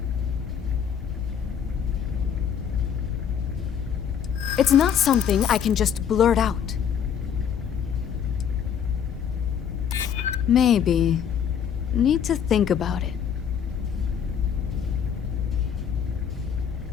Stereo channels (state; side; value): quieter; right; 8.1 dB